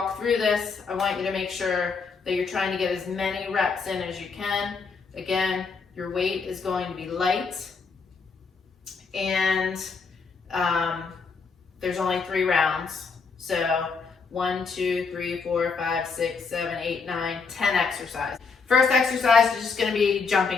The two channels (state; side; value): quieter; right; 5.0 dB